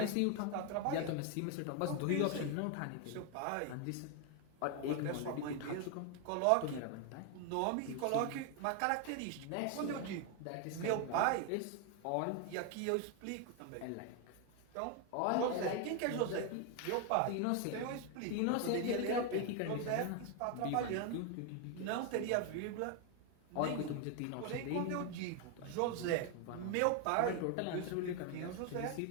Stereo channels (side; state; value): both; different; correlation 0.01